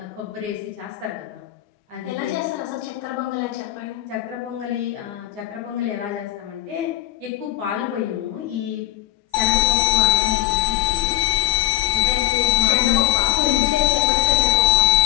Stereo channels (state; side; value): quieter; right; 15.0 dB